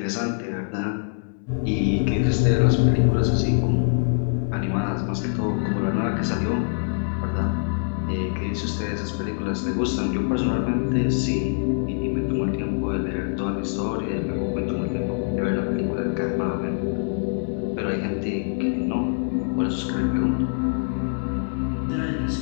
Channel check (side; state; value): right; silent; digital silence